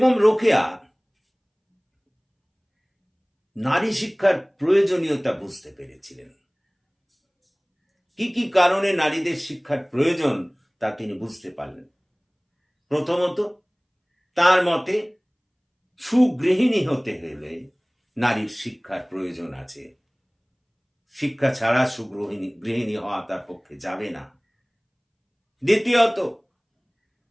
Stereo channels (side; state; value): both; identical; correlation 1.00